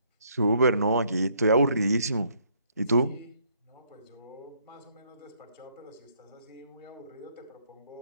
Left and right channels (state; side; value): inverted; both; correlation -0.68